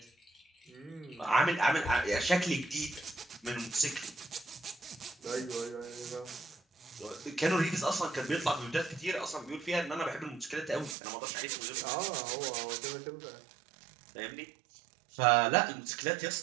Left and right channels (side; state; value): left; drops out; at 11.0 s